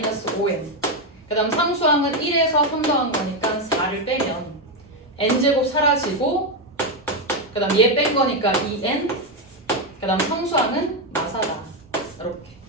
5n 그 다음 상수항은 1에서 3 더한 거니까 4를 빼면 n제곱 사라지고 그 다음 얘 뺀 거니까 2n 그 다음 상수항은 마사다. 이렇게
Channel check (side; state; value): both; normal; correlation 0.06